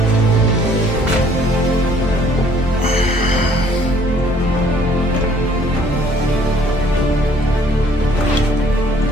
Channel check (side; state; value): both; normal; correlation 0.60